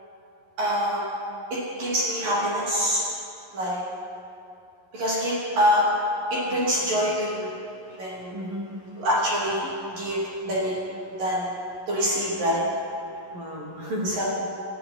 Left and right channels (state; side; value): late; left; 11 ms